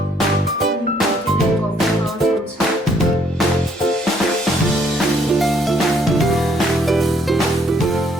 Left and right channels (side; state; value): both; normal; correlation 0.67